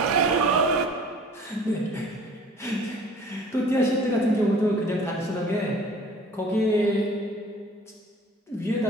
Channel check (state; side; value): normal; both; correlation 0.48